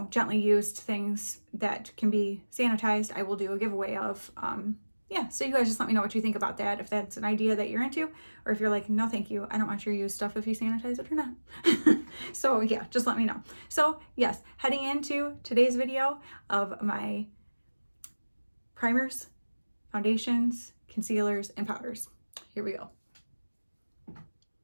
gently used things that can be sanitized. I will do a giveaway of, yeah, so you guys just let me know what you think about that, if that's an idea that you're into, or if you're like, no, thank you, I don't want your used stuff if you sanitize it or not. So yeah, just let me know. So yes, heading into today's video of my primers, foundations, concealers, and powders. Here we go.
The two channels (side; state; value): both; inverted; correlation -1.00